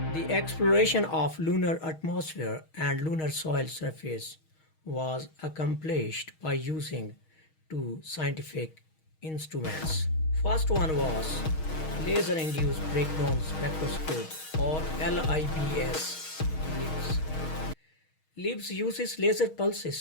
The exploration of lunar atmosphere and lunar soil surface was accomplished by using two scientific instruments. First one was laser-induced breakdown spectroscope, or LIBS. LIBS uses laser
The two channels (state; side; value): late; right; 6.4 ms